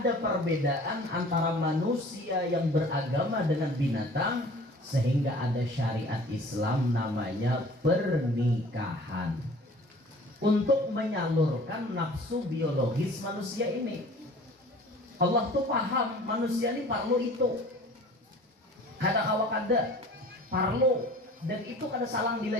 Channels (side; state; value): both; normal; correlation 0.46